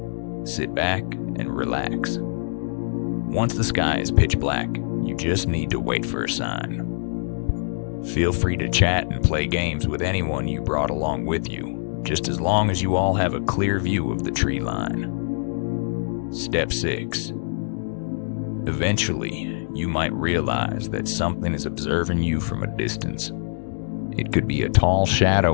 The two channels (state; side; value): silent; right; digital silence